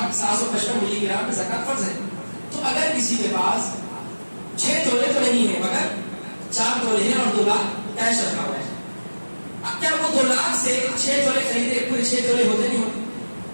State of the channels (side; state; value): both; inverted; correlation -1.00